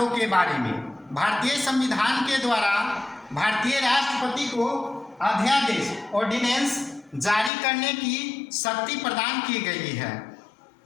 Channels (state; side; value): drops out; right; at 7.5 s